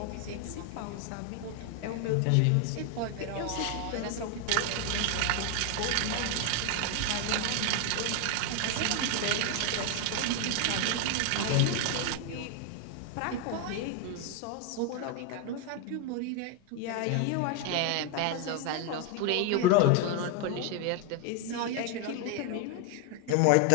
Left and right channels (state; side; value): different; both; correlation 0.01